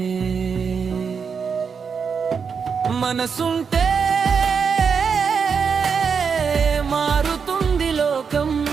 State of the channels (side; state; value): left; quieter; 6.1 dB